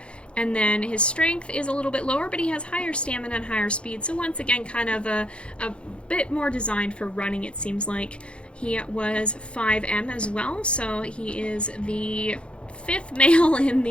And then his strength is a little bit lower, but he has higher stamina and higher speed. So once again, kind of a bit more designed for running, it seems like. He was 5M as well, so he is the 5th male in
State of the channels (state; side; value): late; right; 0.057 ms